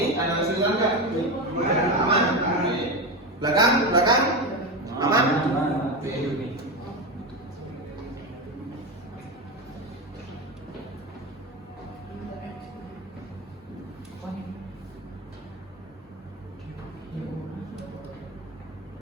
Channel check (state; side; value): normal; both; correlation 0.17